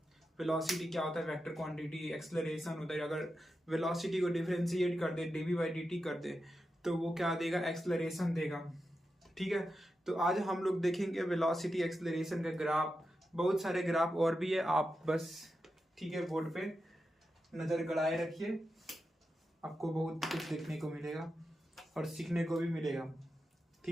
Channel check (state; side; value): normal; both; correlation 0.89